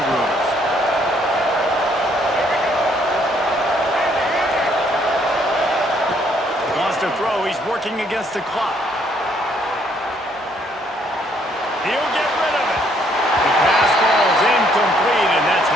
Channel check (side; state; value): both; normal; correlation 0.67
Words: rooms. Wants to throw. He's working against the clock. He'll get rid of it. The pass falls incomplete, and that's